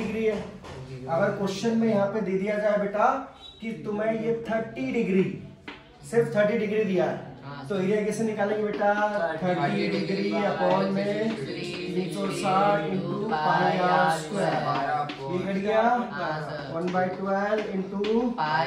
है, अगर क्वेश्चन में यहाँ पे दे दिया जाए बेटा कि तुम्हें ये 30 डिग्री, सिर्फ 30 डिग्री दिया है, तो एरिया कैसे निकालेंगे बेटा, 30 डिग्री अपॉन में 360 इंटू πr²। ये कट गया 1/12 इंटू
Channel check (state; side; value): identical; both; correlation 1.00